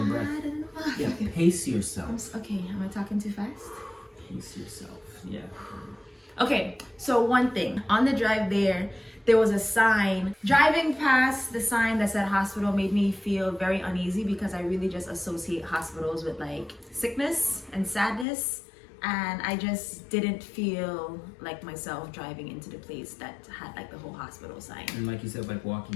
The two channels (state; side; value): drops out; right; at 18.2 s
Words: breath. I don't know. Yeah, pace yourself. Okay, am I talking too fast? Pace yourself. Yeah. Okay, so one thing. On the drive there was a sign. Driving past the sign that said hospital made me feel very uneasy because I really just associate hospitals with like sickness and sadness. And I just didn't feel like myself driving into the place that had like the whole hospital sign. And like you said, like